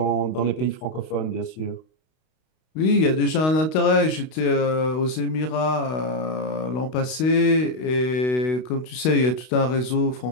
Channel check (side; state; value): right; late; 32 ms